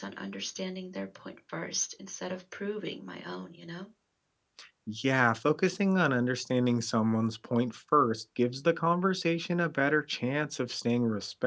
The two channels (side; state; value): both; identical; correlation 1.00